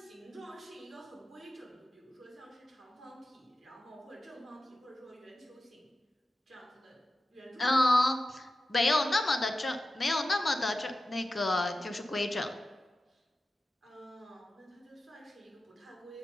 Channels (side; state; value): both; normal; correlation 0.93